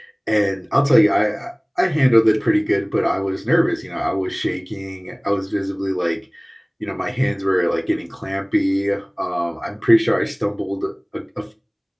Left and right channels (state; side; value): identical; both; correlation 1.00